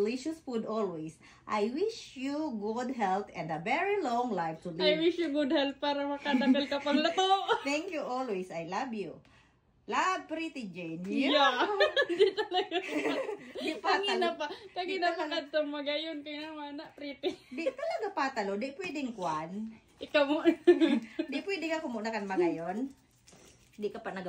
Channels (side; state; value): both; identical; correlation 1.00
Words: food always. I wish you good health and a very long life to live. I wish you good health para makadagal ka pang luto. Thank you always. I love you. Love, Pretty Jane. Yeah. Di talaga. Di patalo. Kagina pa ka magayon. Kaya naman na, pretty. Di talaga patalo. Di pwedeng kwan. Ikaw mo. Di pwedeng ako muna kan magayon. Di ka pa